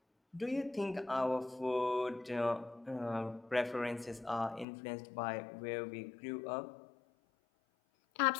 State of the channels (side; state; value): right; drops out; at 4.7 s